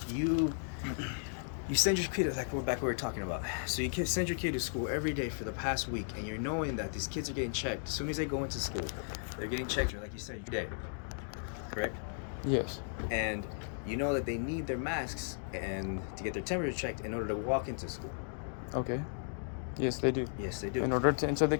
you send your kid, like we're back we were talking about. So you send your kid to school every day for the past week, and you're knowing that these kids are getting checked. As soon as they go into school, they're getting checked, like you said, every day. Correct? Yes. And you know that they need their masks and to get their temperature checked in order to walk into school. Okay. Yes, they do. Yes, they do. In order to enter the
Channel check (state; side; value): silent; right; digital silence